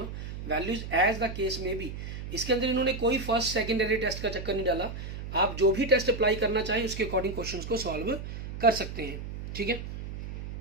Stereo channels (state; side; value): noise; right; hum, 8 dB below the sound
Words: values as the case may be. इसके अंदर इन्होंने कोई फर्स्ट सेकेंडरी टेस्ट का चक्कर नहीं डाला, आप जो भी टेस्ट अप्लाई करना चाहें उसके अकॉर्डिंग क्वेश्चंस को सॉल्व कर सकते हैं, ठीक है।